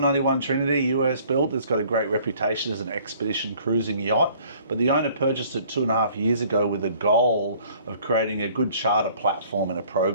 Trinity, US built. It's got a great reputation as an expedition cruising yacht, but the owner purchased it 2.5 years ago with the goal of creating a good charter platform and a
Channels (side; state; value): both; inverted; correlation -0.56